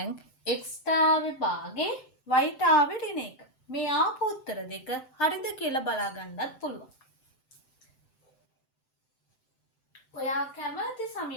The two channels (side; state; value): right; late; 7.8 ms